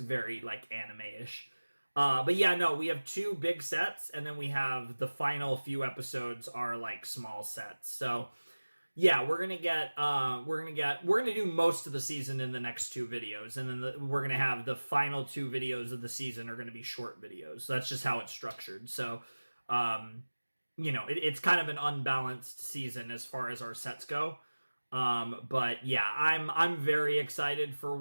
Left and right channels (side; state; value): both; inverted; correlation -1.00